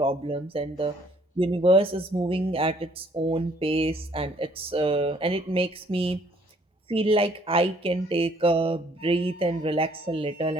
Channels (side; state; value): both; normal; correlation 0.62